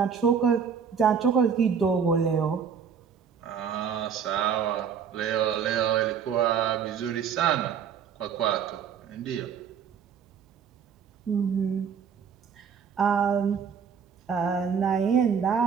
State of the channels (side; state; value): left; quieter; 7.0 dB